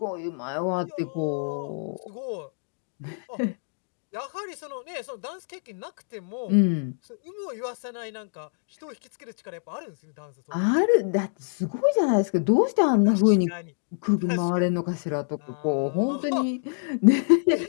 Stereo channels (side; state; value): right; silent; digital silence